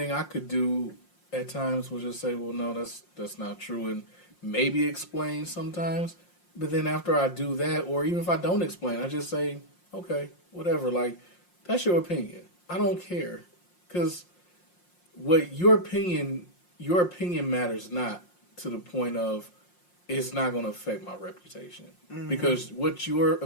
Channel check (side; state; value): right; late; 5.6 ms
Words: I could do at times was just say, well, no, that's not true. And maybe explain sometimes. But then after I do that, or even if I don't explain, I just say, okay, whatever. Like, that's your opinion. I don't care. Because what your opinion matters not to the point of it's not going to affect my reputation. Mm-hmm. Because what your